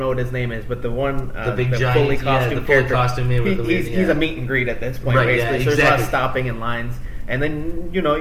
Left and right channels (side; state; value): both; identical; correlation 1.00